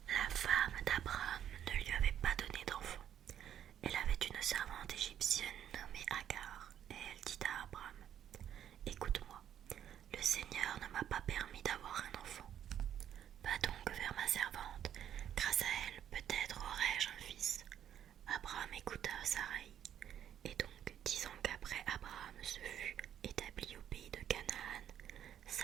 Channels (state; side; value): quieter; left; 10.1 dB